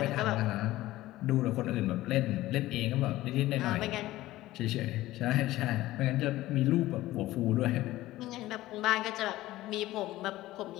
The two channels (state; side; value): quieter; right; 16.5 dB